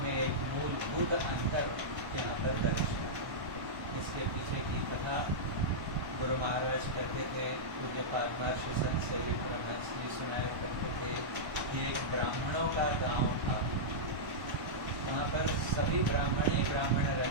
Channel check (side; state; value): left; late; 1.1 ms